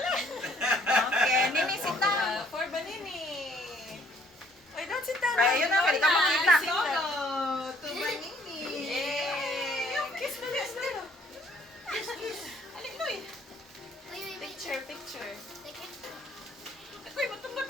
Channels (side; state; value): both; normal; correlation 0.62